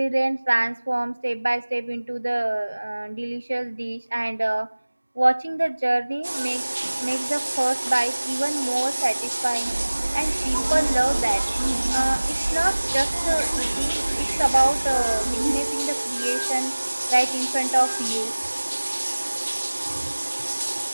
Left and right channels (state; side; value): inverted; both; correlation -1.00